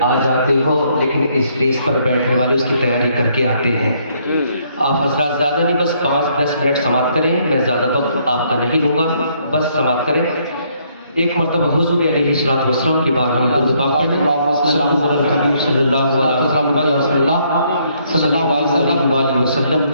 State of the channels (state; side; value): inverted; both; correlation -0.69